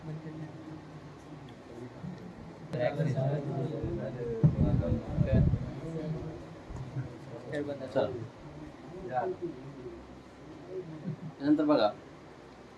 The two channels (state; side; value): identical; both; correlation 1.00